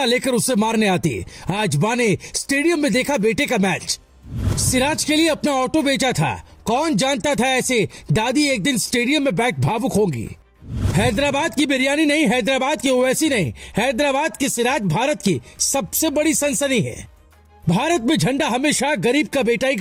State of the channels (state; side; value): identical; both; correlation 1.00